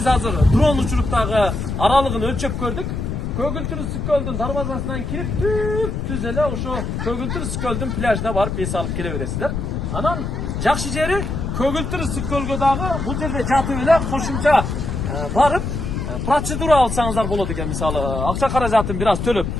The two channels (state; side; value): noise; left; rumble, 3 dB below the sound